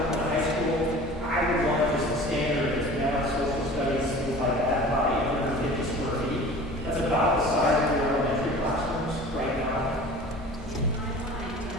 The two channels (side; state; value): both; normal; correlation 0.42